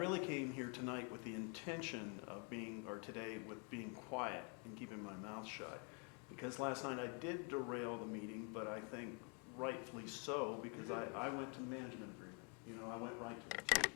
came here tonight with the intention of today with being quiet and keeping my mouth shut. Because last night I did derail the meeting, but I think rightfully so, because I went to the management agreement. I went right to the tape.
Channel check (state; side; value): quieter; right; 37.4 dB